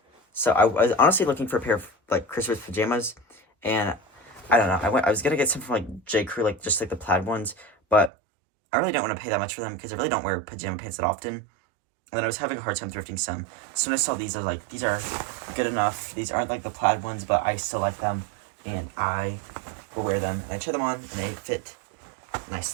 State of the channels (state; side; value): drops out; left; at 8.1 s